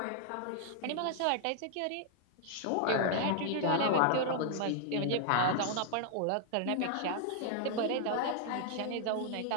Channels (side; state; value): both; different; correlation 0.00